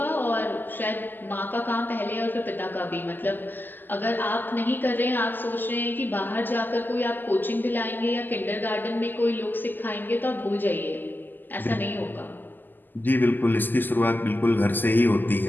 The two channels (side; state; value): right; late; 0.089 ms